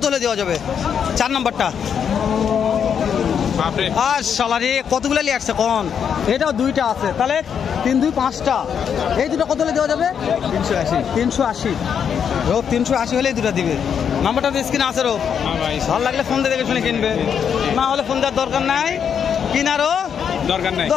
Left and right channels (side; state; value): right; quieter; 7.7 dB